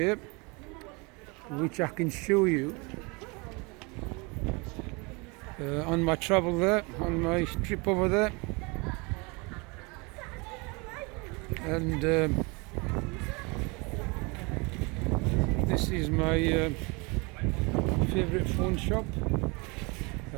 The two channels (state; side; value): quieter; left; 28.6 dB